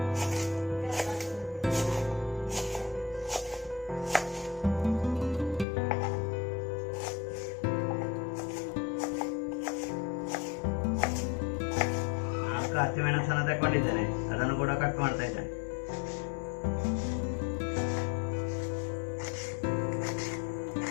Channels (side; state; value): right; drops out; at 5.7 s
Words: ಹಸಿಮೆಣಸನ್ನು ತಗೊಂಡಿದ್ದೇನೆ, ಅದನ್ನು ಕೂಡ ಕಟ್ ಮಾಡ್ತಾ ಇದ್ದೇನೆ.